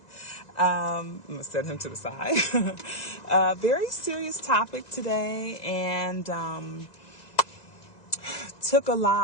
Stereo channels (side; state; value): right; late; 1.9 ms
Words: I'm going to set him to the side. Very serious topic today, and took a